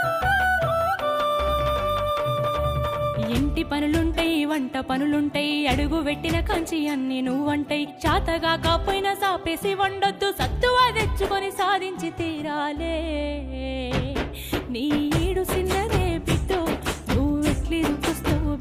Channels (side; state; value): both; identical; correlation 1.00